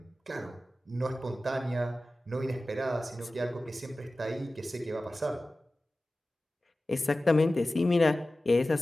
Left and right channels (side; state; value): both; normal; correlation 0.96